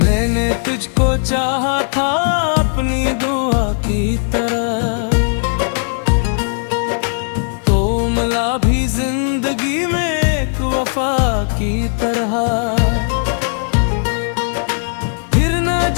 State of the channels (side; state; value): right; silent; digital silence